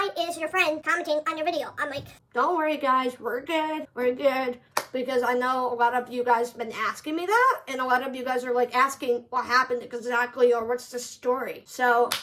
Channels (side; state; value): both; identical; correlation 1.00